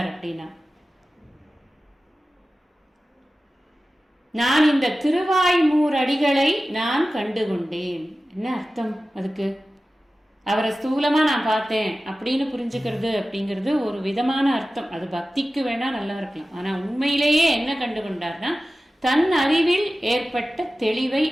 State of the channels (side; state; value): both; normal; correlation 0.95